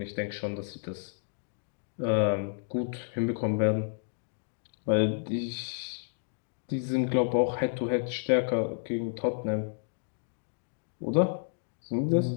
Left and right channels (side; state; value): right; silent; digital silence